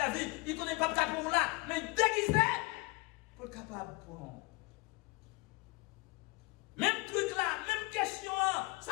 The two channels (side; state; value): right; quieter; 25.3 dB